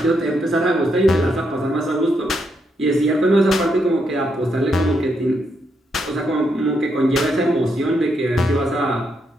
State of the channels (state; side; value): normal; both; correlation 0.79